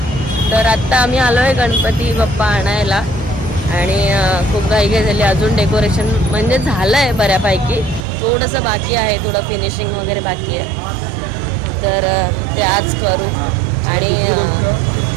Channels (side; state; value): left; drops out; at 8.0 s